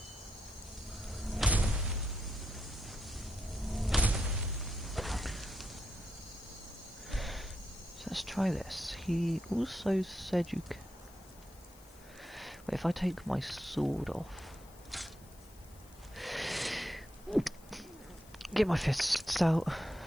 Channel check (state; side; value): noise; left; hiss, 24 dB below the sound